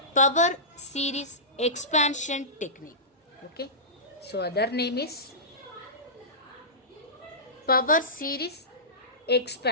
power series expansion technique. Okay, so other name is power series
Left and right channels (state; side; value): normal; both; correlation -0.19